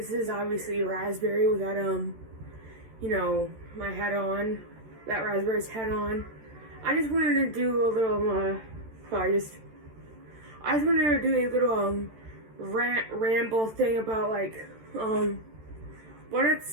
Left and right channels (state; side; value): late; left; 13 ms